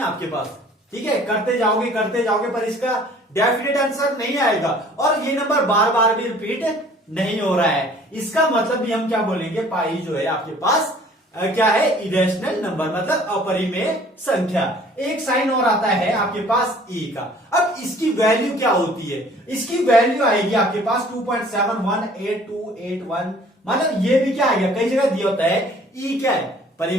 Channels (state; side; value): normal; both; correlation 0.53